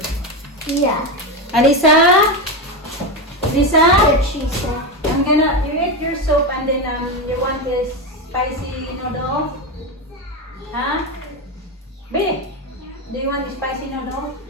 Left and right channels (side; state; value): both; normal; correlation 0.14